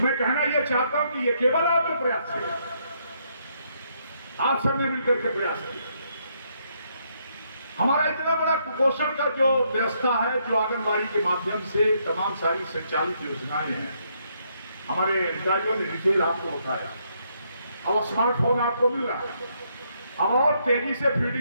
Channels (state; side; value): inverted; both; correlation -0.74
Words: कहना यह चाहता हूं कि ये केवल आपके प्रयास से, आप सबने मिलकर के प्रयास किया। हमारा इतना बड़ा कुपोषण का जो व्यवस्था है, जो आंगनबाड़ी के माध्यम से तमाम सारी संचालित योजनाएं हैं, हमारे अधिकारियों ने डिटेल आपको बताया। अब स्मार्टफोन आपको मिल रहा है, अब और तेजी से